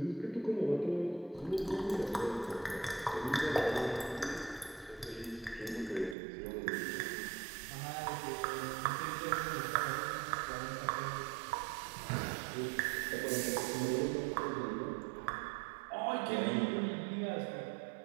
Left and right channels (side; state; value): left; drops out; at 6.2 s